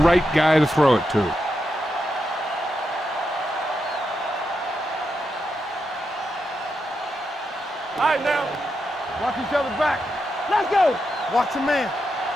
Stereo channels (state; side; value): normal; both; correlation 0.85